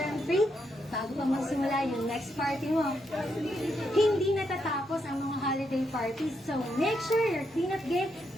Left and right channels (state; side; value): normal; both; correlation 0.79